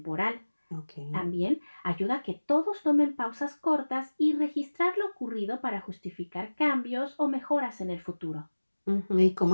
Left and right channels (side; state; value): both; inverted; correlation -1.00